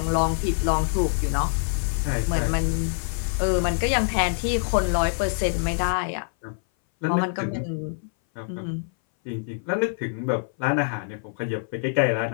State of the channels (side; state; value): right; silent; 59 dB below the other